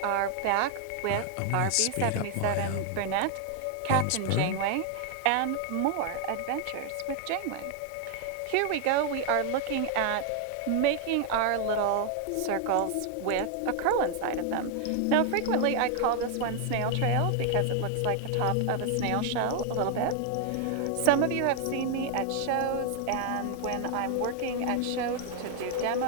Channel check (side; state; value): both; different; correlation 0.00